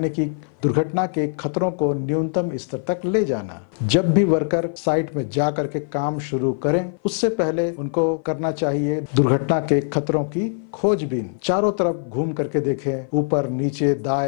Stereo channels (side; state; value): right; silent; 57 dB below the other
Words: कि दुर्घटना के खतरों को न्यूनतम स्तर तक ले जाना। जब भी वर्कर साइट में जा करके काम शुरू करें, उससे पहले उनको करना चाहिए दुर्घटना के खतरों की खोजबीन। चारों तरफ घूम करके देखें, ऊपर नीचे